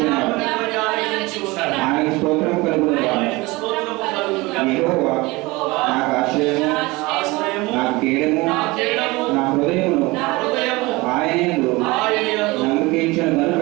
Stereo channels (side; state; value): left; quieter; 22.6 dB